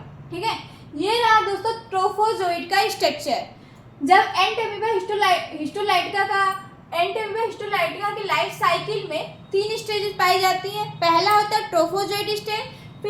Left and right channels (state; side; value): identical; both; correlation 1.00